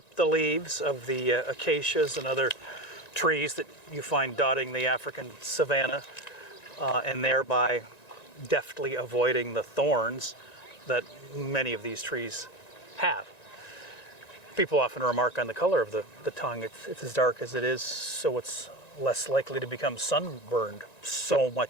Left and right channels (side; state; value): right; late; 1.9 ms